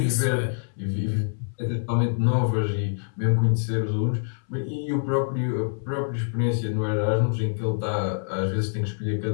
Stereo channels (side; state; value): right; silent; 61 dB below the other